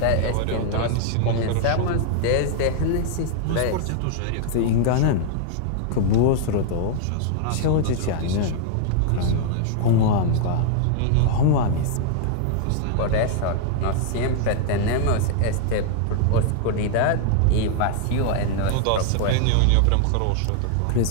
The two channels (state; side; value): different; both; correlation 0.00